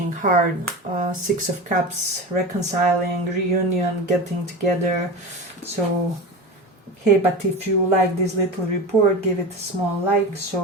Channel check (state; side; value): normal; both; correlation 0.27